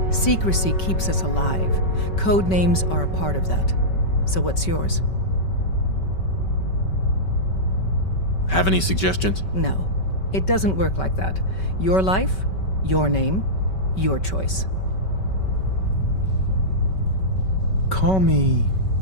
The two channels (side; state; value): right; late; 5.3 ms